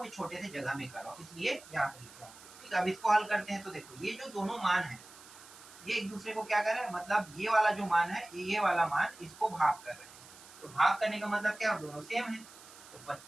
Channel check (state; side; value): noise; right; hiss, 19 dB below the sound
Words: छोटे से जगह में कर रहा हूँ, इसलिए यहाँ पे लिख रहा हूँ। ठीक है, अब इसको हल करते हैं। तो देखो ये जो दोनों मान है, ये एक दूसरे को क्या कर रहे हैं, मतलब ये वाला जो मान है, ये वाला मान, इसको भाग कर रहे हैं, तो भाग करने का मतलब क्या, दोनों सेम है, तो